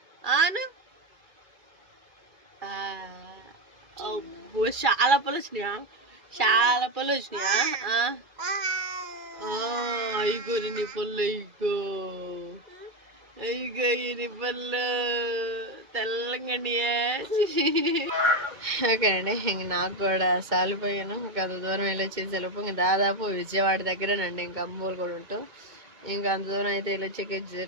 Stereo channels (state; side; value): late; left; 2.3 ms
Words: ఆను. అబ్బో చాలా పళ్ళు వచ్చినాయా? ఇగో నీ పళ్ళు. ఇగో నీ పళ్ళు తెల్లంగా. ఓకే అండి, ఇంక నాకు కూడా సాలిపోయాను. ఇంకా అంత దూరం వెళ్ళొచ్చేసేలోపు ఇంక దాదాపు విజయవాడ దగ్గరేనండి. ఇంకా అమ్మూరు కూడా ఉంటూ ఇంకా అంత దూరం అయితే వెళ్ళొచ్చే